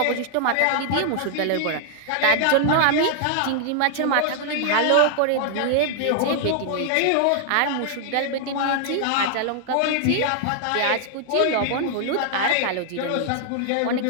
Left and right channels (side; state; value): both; different; correlation -0.01